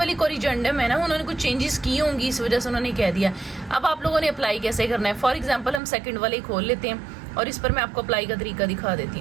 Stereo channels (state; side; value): drops out; left; at 5.8 s